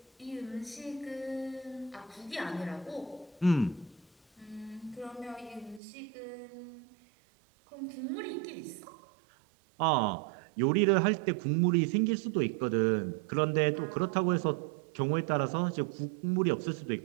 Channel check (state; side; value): drops out; left; at 5.8 s